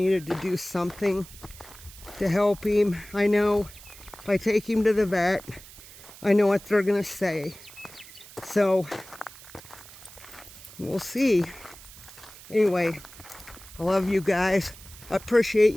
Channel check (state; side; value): noise; right; hiss, 19 dB below the sound